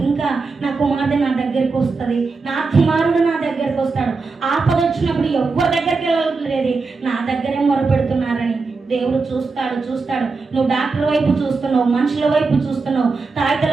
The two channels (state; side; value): quieter; left; 4.2 dB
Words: నా కుమార్తె నా దగ్గరికి వస్తుంది, నా కుమారుడు నా దగ్గరికి వస్తాడు. ఆపద వచ్చినప్పుడు ఎవరి దగ్గరికి వెళ్ళలేదు, నా దగ్గరే మొరపెడుతున్నారని దేవుడు చూస్తాడు. నువ్వు డాక్టర్ వైపు చూస్తున్నావు, మనుషుల వైపు చూస్తున్నావు,